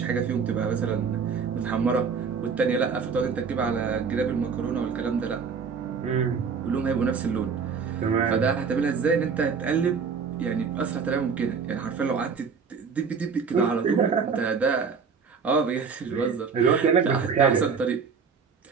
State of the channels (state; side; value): quieter; left; 5.8 dB